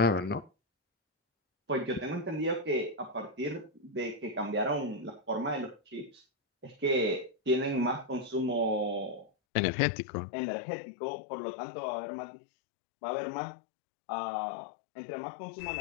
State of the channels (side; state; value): right; drops out; at 9.3 s